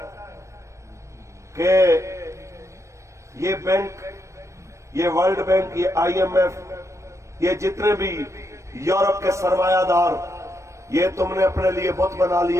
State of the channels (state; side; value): late; left; 0.15 ms